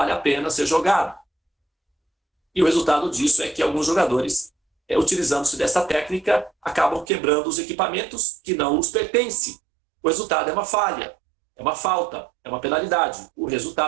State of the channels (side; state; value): left; drops out; at 7.1 s